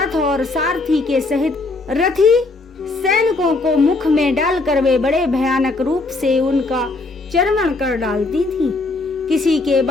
और सारथी के सहित रथी सैनिकों को मुख में डालकर वे बड़े भयानक रूप से उनका चर्वण कर डालती थी। किसी के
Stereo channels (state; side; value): quieter; right; 3.3 dB